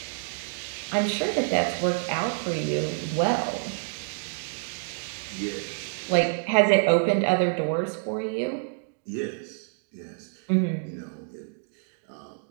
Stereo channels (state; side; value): silent; left; digital silence